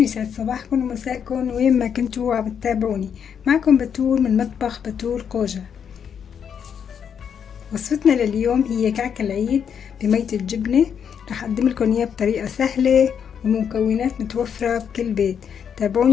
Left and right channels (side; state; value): right; quieter; 7.7 dB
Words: يسعد صباحكم ومساءكم وين ما كنتوا عم بتتابعوني. معكم بتول من مطبخ بتول قوجة. وصفتنا لليوم هي كعك العيد بمية الجبنة. رح أقدم لكم إياه بطريقة سهلة ومكونات متوفرة بكل بيت.